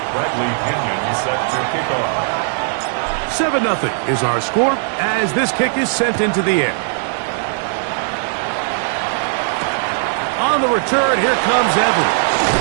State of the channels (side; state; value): left; silent; 61 dB below the other